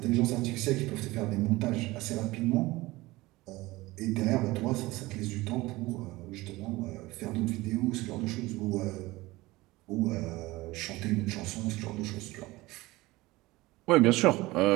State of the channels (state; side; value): quieter; left; 20.0 dB